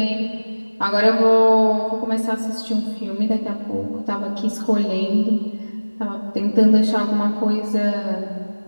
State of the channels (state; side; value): inverted; both; correlation -1.00